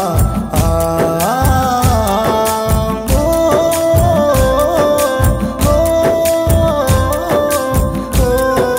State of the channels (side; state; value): both; identical; correlation 1.00